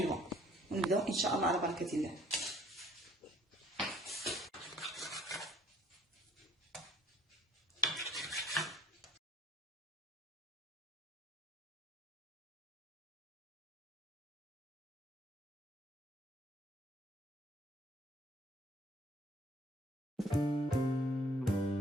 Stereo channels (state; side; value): normal; both; correlation 0.57